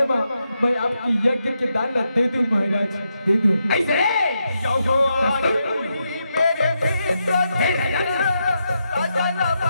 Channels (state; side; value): inverted; both; correlation -0.83